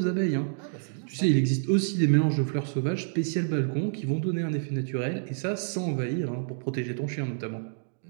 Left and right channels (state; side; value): silent; left; digital silence